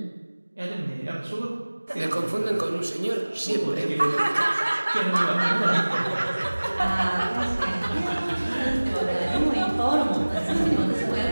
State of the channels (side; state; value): both; inverted; correlation -1.00